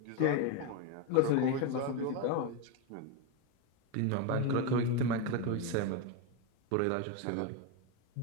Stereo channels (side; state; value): both; different; correlation 0.02